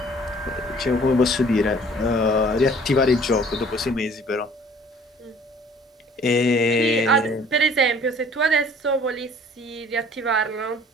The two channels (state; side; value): normal; both; correlation 0.53